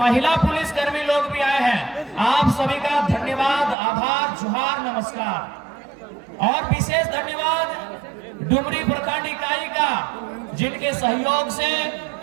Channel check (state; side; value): drops out; left; at 3.8 s